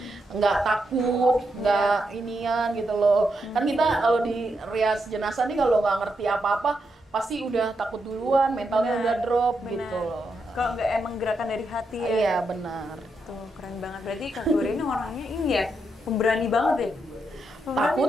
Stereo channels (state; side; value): normal; both; correlation 0.82